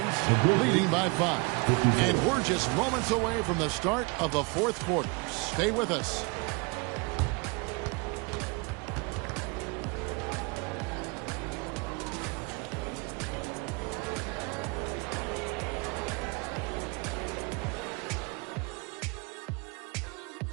leading by 5. And we're just moments away from the start of the fourth quarter. Stay with us.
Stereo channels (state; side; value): quieter; left; 29.4 dB